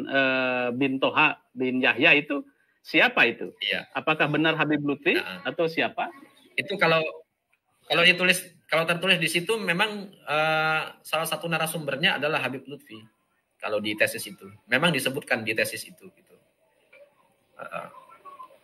bin Toha bin Yahya, itu siapa itu? Iya. Apakah benar Habib Lutfi atau siapa? Itu kalau tertulis di situ memang salah satu narasumbernya adalah Habib Lutfi. Kalau di tesis itu memang disebutkan di tesis itu gitu.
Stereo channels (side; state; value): both; identical; correlation 1.00